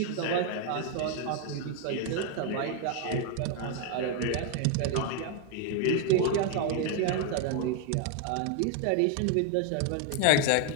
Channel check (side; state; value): both; different; correlation 0.01